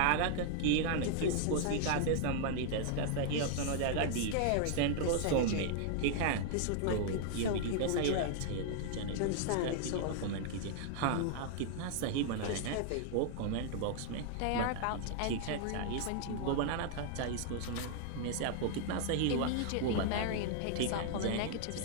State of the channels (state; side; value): different; both; correlation 0.00